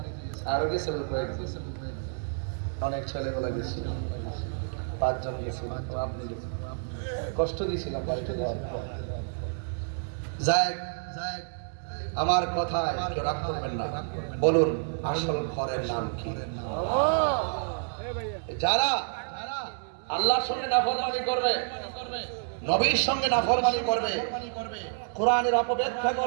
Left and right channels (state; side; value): silent; left; digital silence